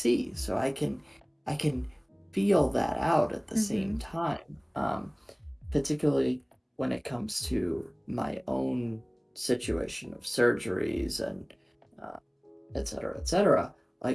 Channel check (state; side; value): identical; both; correlation 1.00